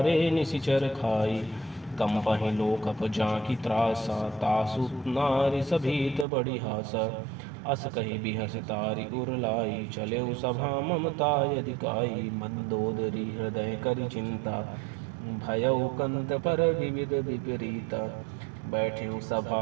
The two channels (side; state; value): left; drops out; at 6.2 s